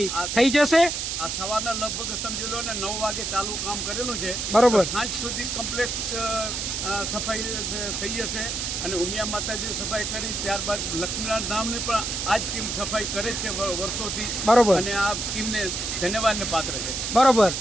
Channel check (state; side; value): noise; right; hiss, 3 dB below the sound